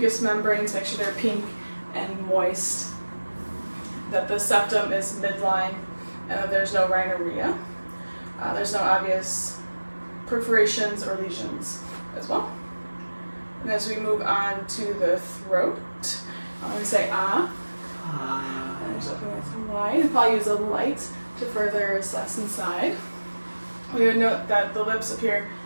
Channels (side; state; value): both; inverted; correlation -1.00